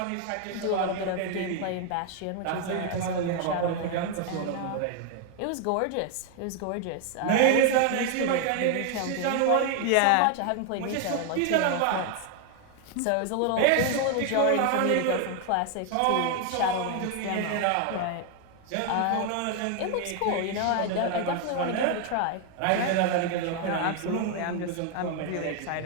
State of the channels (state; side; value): different; both; correlation 0.01